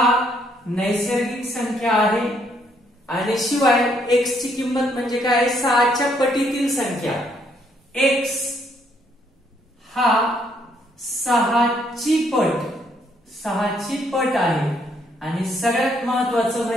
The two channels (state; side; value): normal; both; correlation 0.70